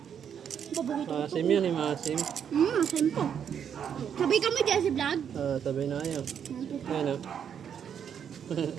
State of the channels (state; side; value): quieter; left; 8.2 dB